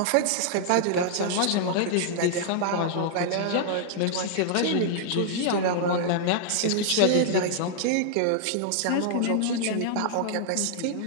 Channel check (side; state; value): both; different; correlation -0.01